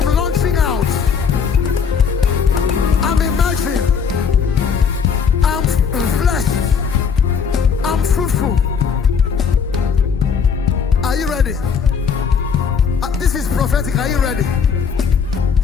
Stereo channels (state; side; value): quieter; right; 6.4 dB